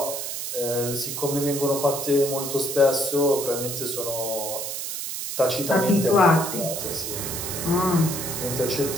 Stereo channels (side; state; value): right; noise; hiss, 5 dB below the sound